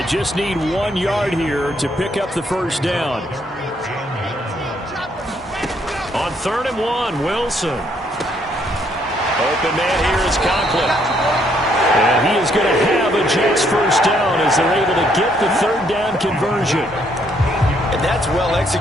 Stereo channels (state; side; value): normal; both; correlation 0.70